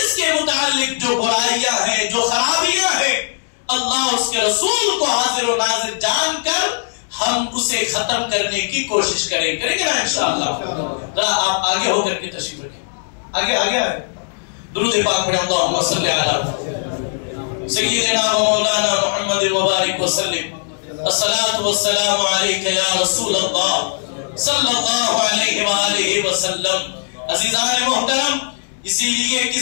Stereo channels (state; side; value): silent; right; digital silence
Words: کے متعلق جو برائیاں ہیں، جو خرابیاں ہیں، اللہ اس کے رسول کو حاضر و ناظر جان کر ہم اسے ختم کرنے کی کوشش کریں گے نا انشاءاللہ. ذرا آپ آگے ہو کر کے تشریف رکھیں. آگے درود پاک پڑھیں. اللہم صلی علی سیدنا و مولانا محمد مبارک وسلم. الصلاۃ والسلام علیک یا رسول اللہ صلی اللہ علیہ وآلہ وسلم. عزیزان محترم، اسی لیے